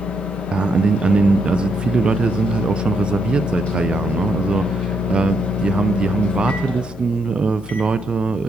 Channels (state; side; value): normal; both; correlation 0.77